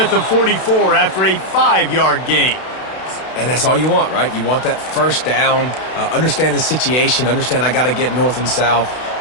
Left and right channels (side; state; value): right; late; 32 ms